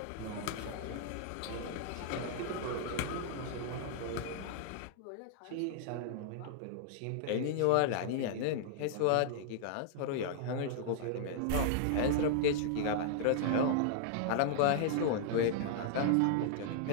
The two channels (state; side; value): different; both; correlation -0.01